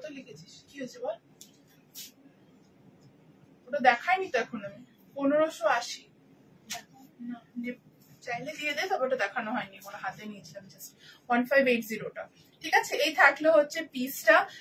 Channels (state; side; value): identical; both; correlation 1.00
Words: লিখেছিস, কি হয়েছে বল, ওটা দেখাইনি তো এখন আমি। 1580 চাইলে দিয়ে দে, তবে ওটা দেখানো হয়নি, ওটা হাতে নিয়েছিলাম জাস্ট 1580টা। ঠিক আছে, এই থাকলো হচ্ছে পিসটা